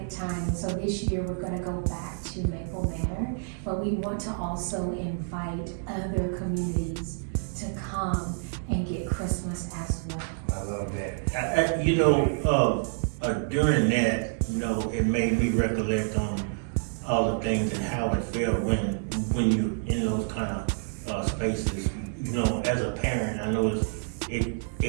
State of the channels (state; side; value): silent; left; 59 dB below the other